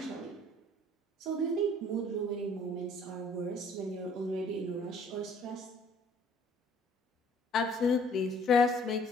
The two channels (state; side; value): normal; both; correlation 0.57